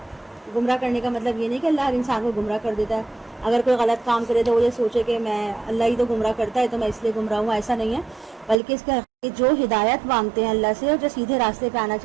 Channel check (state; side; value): drops out; left; at 8.6 s